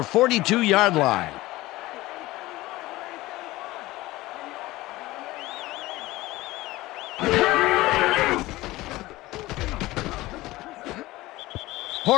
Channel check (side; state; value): right; quieter; 18.5 dB